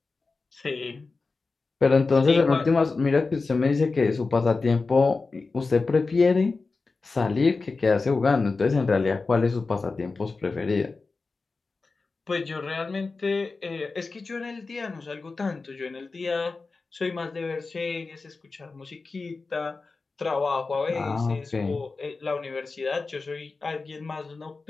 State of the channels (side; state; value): right; quieter; 4.0 dB